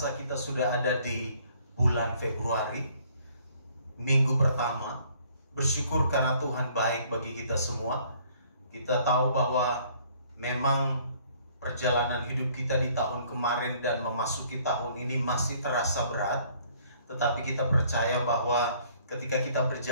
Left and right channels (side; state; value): both; inverted; correlation -0.60